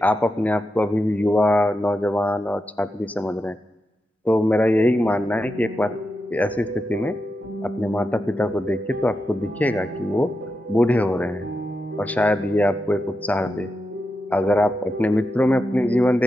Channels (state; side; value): normal; both; correlation 0.88